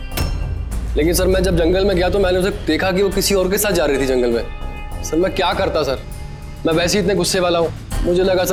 लेकिन सर मैं जब जंगल में गया तो मैंने उसे देखा कि वो किसी और के साथ जा रही थी जंगल में। सर मैं क्या करता सर, मैं वैसे ही इतने गुस्से वाला हूँ। मुझे लगा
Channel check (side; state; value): both; identical; correlation 1.00